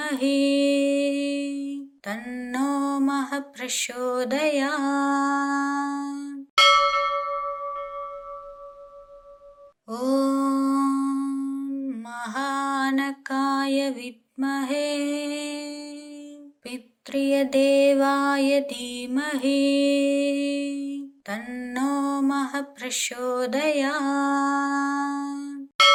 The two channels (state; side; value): identical; both; correlation 1.00